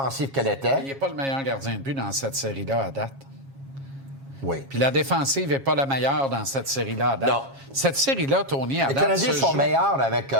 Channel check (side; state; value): left; late; 7.0 ms